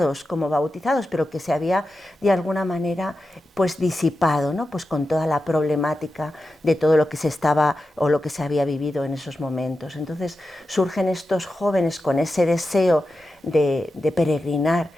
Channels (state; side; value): normal; both; correlation 0.91